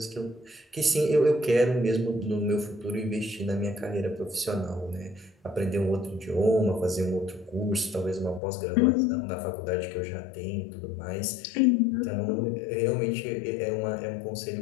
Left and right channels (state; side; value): drops out; right; at 8.4 s